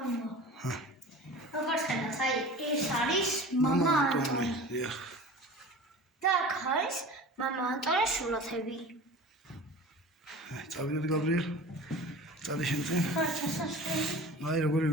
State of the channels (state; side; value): normal; both; correlation 0.38